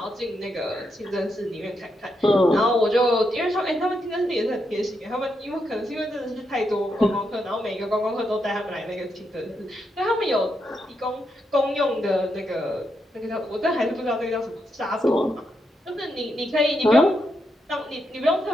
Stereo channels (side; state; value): both; normal; correlation 0.82